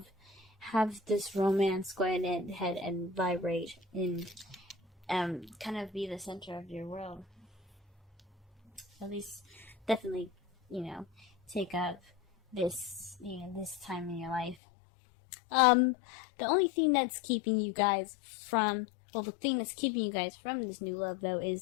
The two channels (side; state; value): right; drops out; at 14.6 s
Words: Have this romance go ahead and vibrate and kind of be the center of your world. At least, definitely, take up this time in your life. The only thing that's keeping you guys from this new love, though,